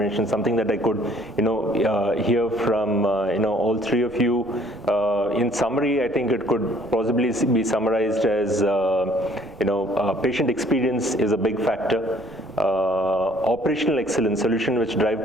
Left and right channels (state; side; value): noise; right; rumble, 24 dB below the sound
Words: something that I could, hear from, all three of you. In summary, I think it could possibly be summarized as, patient experience is a big factor. Operational excellence, solution which drive